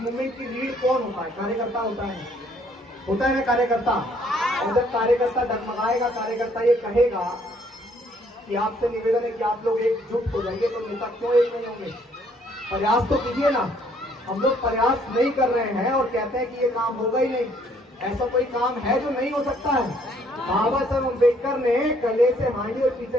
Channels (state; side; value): normal; both; correlation 0.64